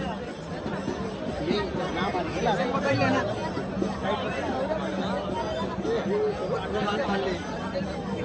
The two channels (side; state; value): both; identical; correlation 1.00